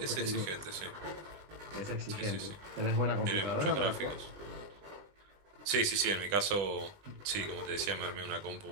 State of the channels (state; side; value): late; left; 20 ms